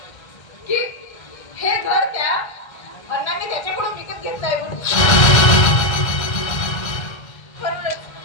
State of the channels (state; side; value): late; right; 1.3 ms